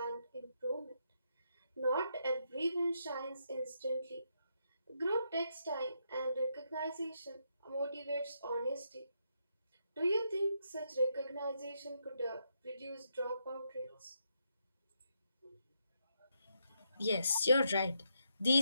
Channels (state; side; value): inverted; both; correlation -0.79